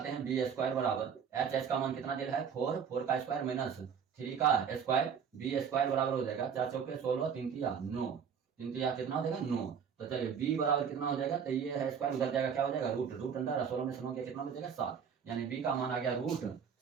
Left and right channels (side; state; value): left; quieter; 7.1 dB